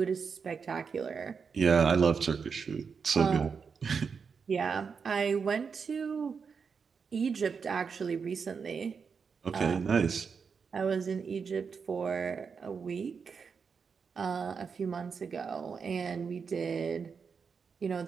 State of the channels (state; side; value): quieter; left; 5.8 dB